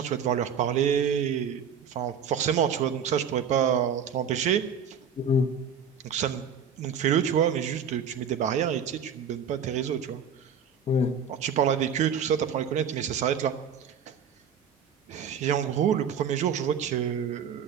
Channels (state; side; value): quieter; left; 6.6 dB